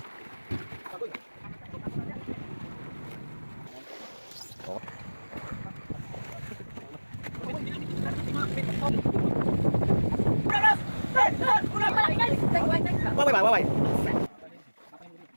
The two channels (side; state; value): both; inverted; correlation -1.00